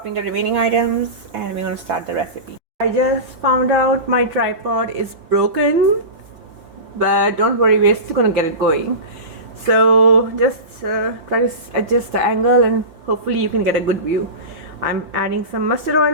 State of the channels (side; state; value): left; late; 6.2 ms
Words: the remaining items and we're going to start the recipe. I just found out my tripod is broken, but don't worry, we're still going to get it going. So just try to adjust the angle and hopefully you can get a good view. I'm adding some mustard oil